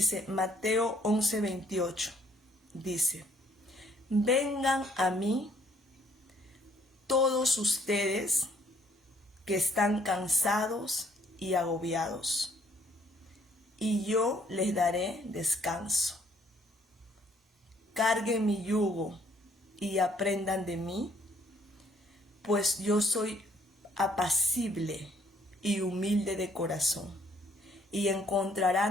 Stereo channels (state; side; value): normal; both; correlation 0.64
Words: Mateo 11:28, dice: vengan a mí todos ustedes que están cansados y agobiados, y yo les daré descanso. Carguen mi yugo y aprendan de mí, pues yo soy apacible y humilde de corazón, y